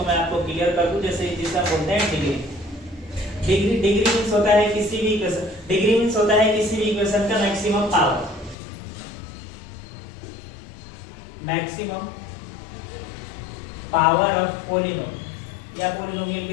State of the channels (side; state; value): right; drops out; at 8.6 s